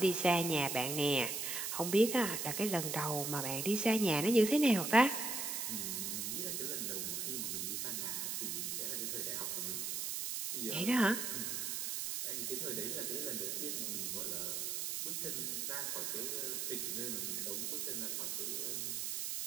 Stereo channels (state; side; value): noise; right; hiss, 2 dB below the sound